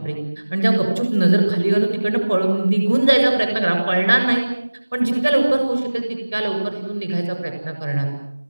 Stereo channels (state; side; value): inverted; both; correlation -1.00